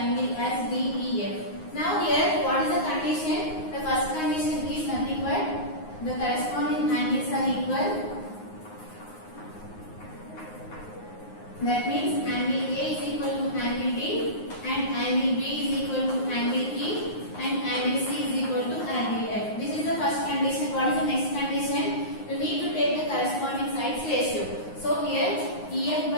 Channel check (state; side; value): late; right; 9.5 ms